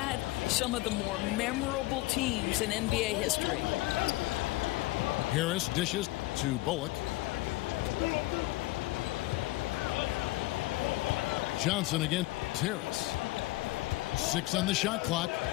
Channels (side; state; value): right; quieter; 19.7 dB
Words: some of the more memorable teams in NBA history. Harris dishes to Bullock. Johnson against Harris. 6 on the shot clock.